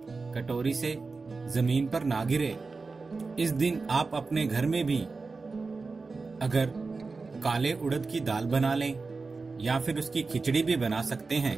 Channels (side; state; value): left; quieter; 4.1 dB